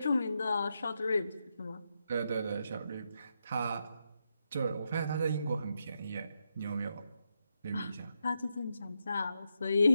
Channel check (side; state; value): both; inverted; correlation -0.84